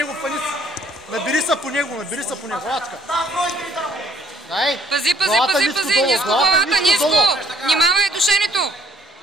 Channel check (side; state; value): both; normal; correlation 0.64